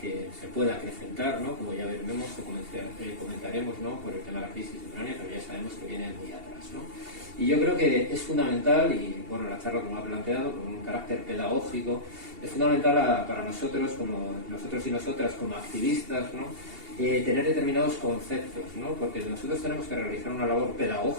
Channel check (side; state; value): left; late; 2.8 ms